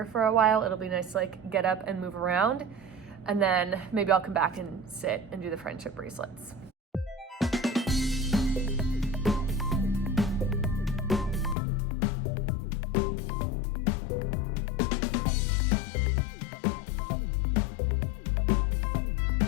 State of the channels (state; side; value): drops out; right; at 11.6 s